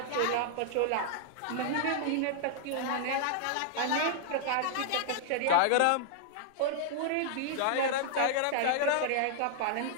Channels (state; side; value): different; both; correlation -0.01